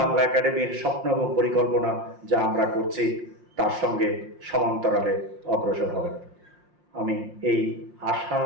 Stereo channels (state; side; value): late; left; 5.6 ms